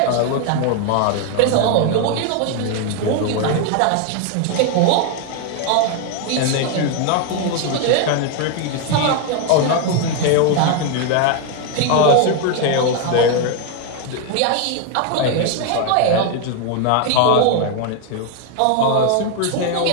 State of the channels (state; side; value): different; both; correlation 0.01